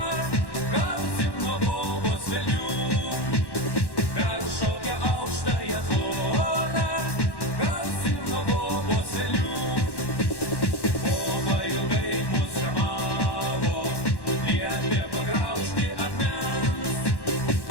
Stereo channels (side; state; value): right; late; 1.1 ms